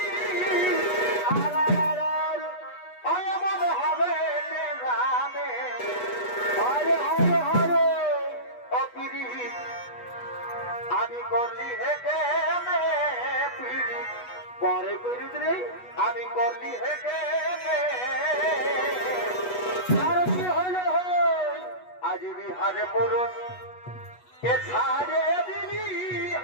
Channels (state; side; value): late; right; 8.2 ms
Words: ওই মনে হবে কে জানে হরে হরে হরে অপিরি আমি করলি হেঁটে পিড়ি পরে করিস রে আমি করলি হেঁটে আর কি হলো আজ বিহারে পুরুষ এ ছাড়ে দিলি